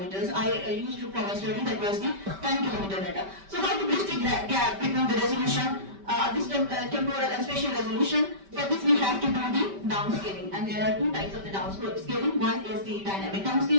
I used to for my study that was the 10 kilometer data. So how to bridge the gap between the resolution, this temporal and spatial resolution? For this we have to do the downscaling, and there are two types of the downscaling. One is the dynamic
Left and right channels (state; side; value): late; left; 5.1 ms